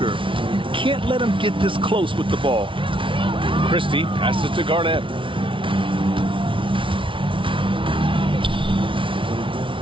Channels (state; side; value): late; left; 0.25 ms